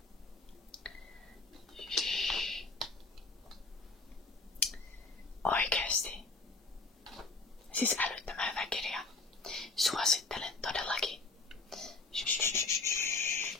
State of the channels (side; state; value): right; quieter; 3.6 dB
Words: Oikeesti. Siis älyttömän hyvä kirja. Suosittelen todellakin.